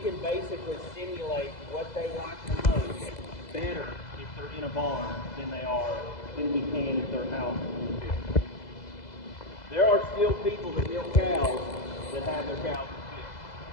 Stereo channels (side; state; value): right; late; 2.0 ms